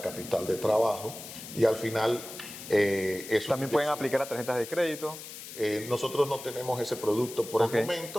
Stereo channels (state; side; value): noise; left; hiss, 12 dB below the sound